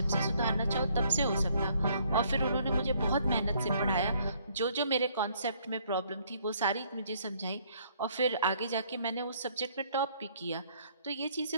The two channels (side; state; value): both; inverted; correlation -0.65